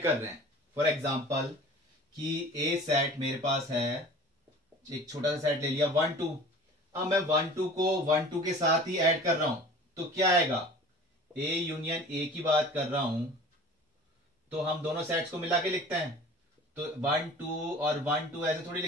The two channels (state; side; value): normal; both; correlation 0.43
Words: कर रहे हैं। फॉर एग्जांपल कि ए सेट मेरे पास है, एक छोटा सा सेट ले लिया 1 2। अब मैं 1 2 को 1 2 के साथ ही ऐड कर रहा हूं तो क्या आएगा? ए यूनियन ए की बात कर रहा हूं तो हम दोनों सेट्स को मिला के लिखते हैं, तो 1 2 और 1 2 ऐसे थोड़ी